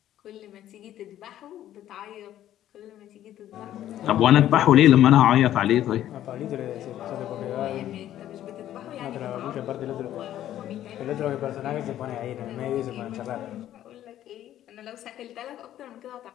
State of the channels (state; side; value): quieter; right; 12.2 dB